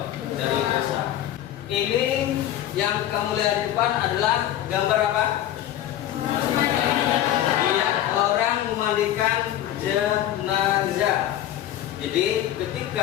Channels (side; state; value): right; quieter; 12.3 dB